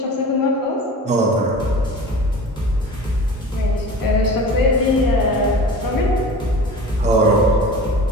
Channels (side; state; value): both; normal; correlation 0.38